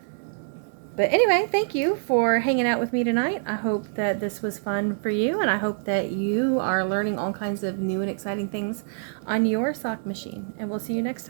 But anyway, thank you for hanging out with me tonight. I hope that this was fun for you, and I hope that you are learning all kinds of new and exciting things on your sock machine. And we'll see you next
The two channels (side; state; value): left; silent; digital silence